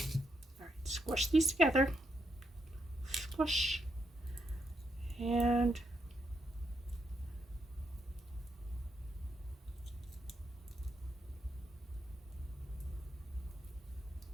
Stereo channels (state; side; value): normal; both; correlation 0.80